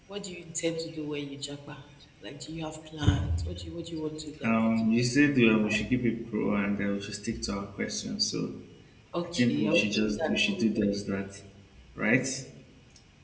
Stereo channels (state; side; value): identical; both; correlation 1.00